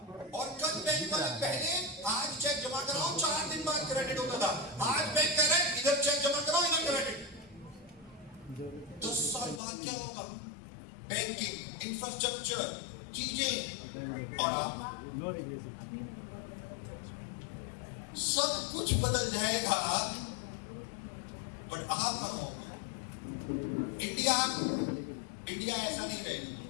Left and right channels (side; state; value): right; drops out; at 9.6 s